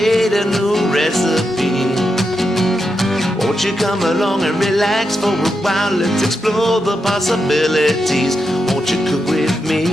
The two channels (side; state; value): both; normal; correlation 0.86